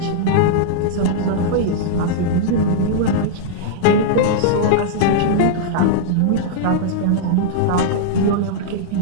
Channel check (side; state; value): both; different; correlation -0.02